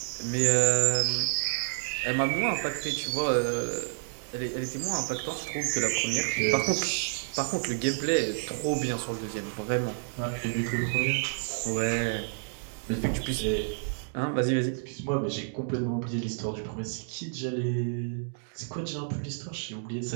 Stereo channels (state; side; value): silent; left; digital silence